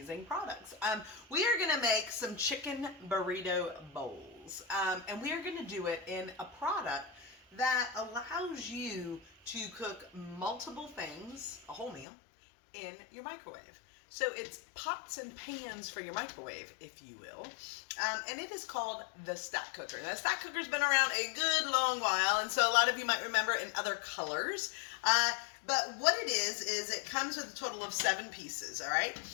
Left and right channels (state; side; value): drops out; right; at 12.1 s